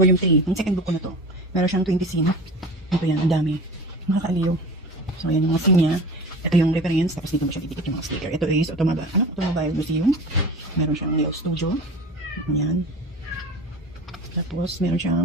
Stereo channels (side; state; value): both; normal; correlation 0.36